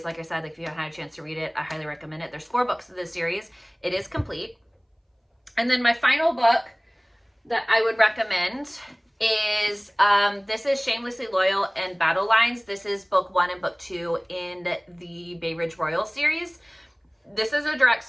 Like I said, like if you haven't had a chance to read it, I highly recommend it. There's 4 books of this series. It is complete. And then my final book that I would recommend is, this is Shamelessly Loyal and Battle Lines. This is book 1 and book 2 in the Bay Ridge Royal series. This is a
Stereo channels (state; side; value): identical; both; correlation 1.00